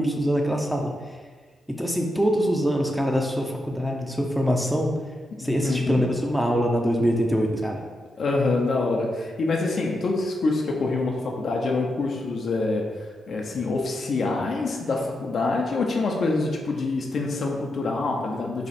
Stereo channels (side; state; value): both; normal; correlation 0.85